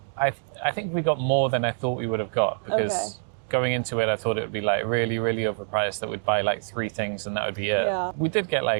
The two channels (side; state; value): left; silent; digital silence